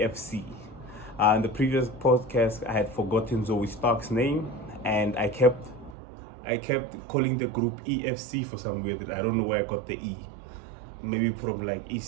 In the previous podcast, I had forgotten Zoe Stark's name, and I kept calling the group EFC for some weird. I don't know where I got the E. Maybe from like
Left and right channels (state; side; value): drops out; left; at 6.0 s